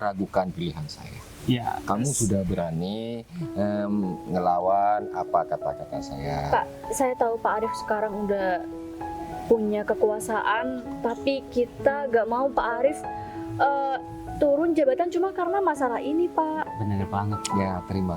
pilihan saya. Ya, Kamu sudah berani ngelawan apa kata-kata saya. Pak, saya tahu Pak Arif sekarang udah punya kekuasaan, tapi kita gak mau Pak Arif turun jabatan cuma karena masalah ini, Pak. benar banget. Ya, terima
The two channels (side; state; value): both; identical; correlation 1.00